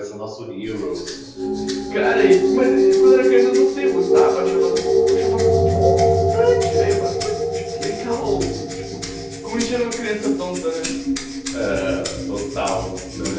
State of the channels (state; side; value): identical; both; correlation 1.00